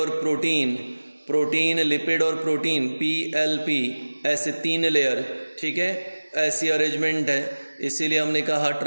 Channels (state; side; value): inverted; both; correlation -1.00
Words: प्रोटीन, प्रोटीन, लिपिड और प्रोटीन, PLP, ऐसे 3 लेयर, ठीक है, ऐसी अरेंजमेंट है। इसीलिए हमने कहा